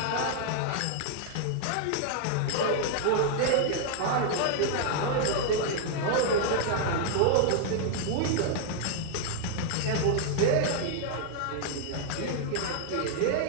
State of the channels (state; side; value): different; both; correlation -0.01